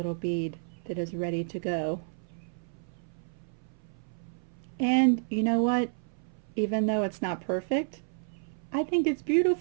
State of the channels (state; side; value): silent; left; 57 dB below the other